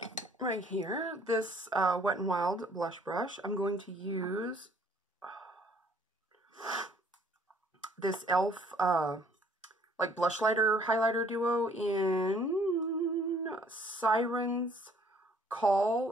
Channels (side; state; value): both; normal; correlation 0.59